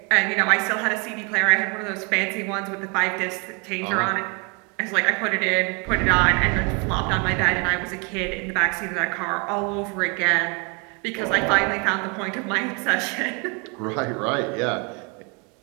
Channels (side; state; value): left; quieter; 32.6 dB